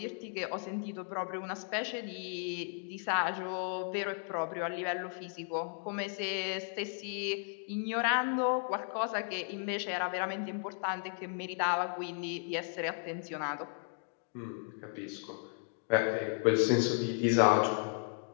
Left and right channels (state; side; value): silent; right; 55 dB below the other